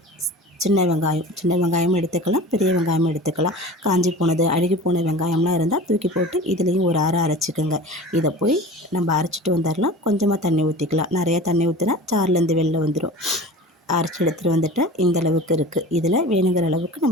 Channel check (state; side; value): normal; both; correlation 0.37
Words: சின்ன வெங்காயம் எடுத்துக்கலாம், பெரிய வெங்காயமும் எடுத்துக்கலாம். காஞ்சி போனது, அழுகி போன வெங்காயம்லாம் இருந்தால் தூக்கி போட்டு இதுலேயும் ஒரு அரைச்சிக்கோங்க. இதை போய் நம்ம அரைச்சிட்டு வந்துடலாம். கொஞ்சமாக தண்ணி ஊற்றிக்கலாம். நிறையா தண்ணி ஊற்றினா சார்லேருந்து வெளில வந்துடும். அரைச்சி எடுத்துகிட்டு வந்துட்டு இந்த அளவுக்கு இருக்குது. இதில் வேணுங்கிற அளவுக்கு